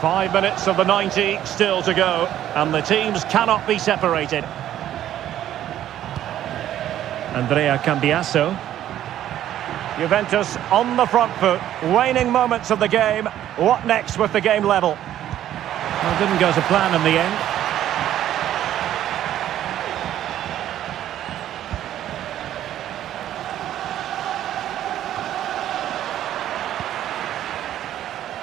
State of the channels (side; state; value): left; quieter; 11.9 dB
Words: 5 minutes of the 90 still to go, and the teams cannot be separated. Andrea Cambiasso. Juventus on the front foot, waning moments of the game. What next with the game level? Well, it didn't go to plan in the end.